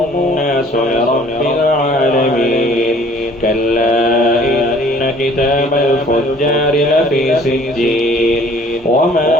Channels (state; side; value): normal; both; correlation 0.54